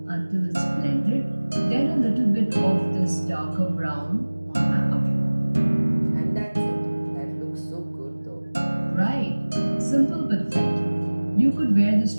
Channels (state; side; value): inverted; both; correlation -1.00